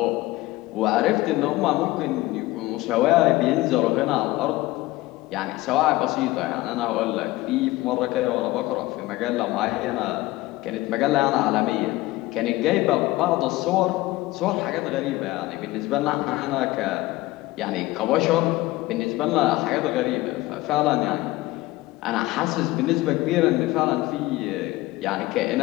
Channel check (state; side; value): quieter; right; 18.9 dB